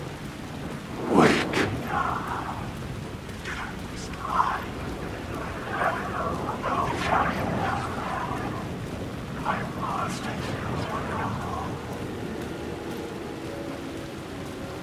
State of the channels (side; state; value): both; identical; correlation 1.00